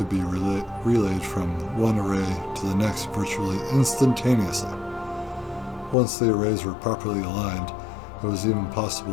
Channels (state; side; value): drops out; right; at 6.0 s